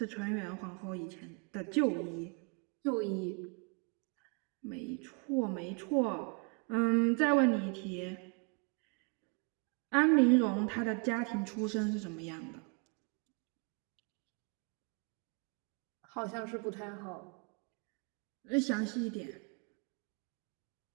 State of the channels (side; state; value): left; quieter; 34.7 dB